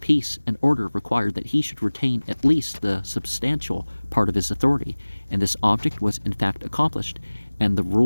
and order required that he should retain at least the substantial part of his authority, and this object was in fact accomplished, and the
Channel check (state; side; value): inverted; both; correlation -1.00